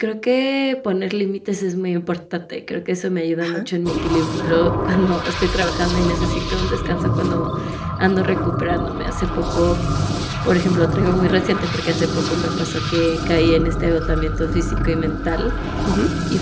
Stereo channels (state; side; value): identical; both; correlation 1.00